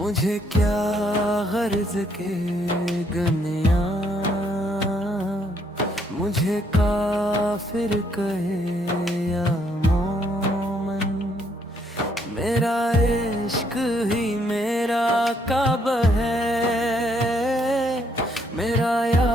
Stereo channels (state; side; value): normal; both; correlation 0.70